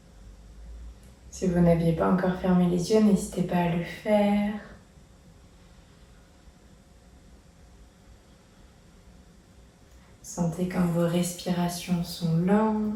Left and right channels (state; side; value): identical; both; correlation 1.00